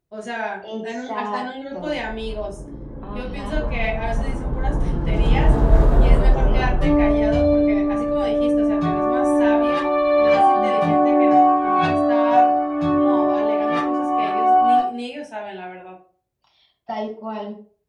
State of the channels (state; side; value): identical; both; correlation 1.00